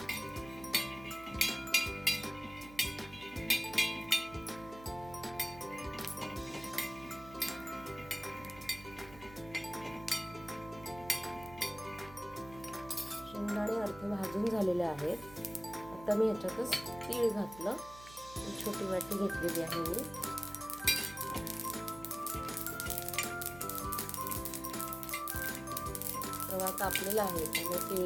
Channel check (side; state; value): right; noise; hum, 18 dB below the sound